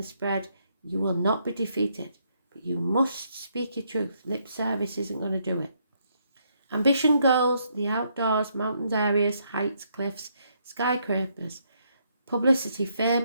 spread, You will not be defeated, but you must speak your truth. Lip service isn't going to do it. Ambition, goals, the outdoors, mountains, areas, heights, cliffs, skyscrapers, publicity,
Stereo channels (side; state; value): both; inverted; correlation -0.74